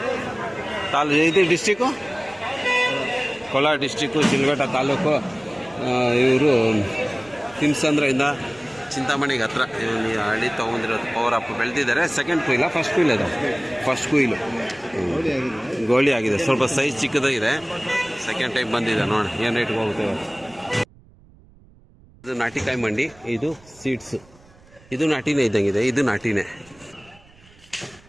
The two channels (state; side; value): noise; right; rumble, 27 dB below the sound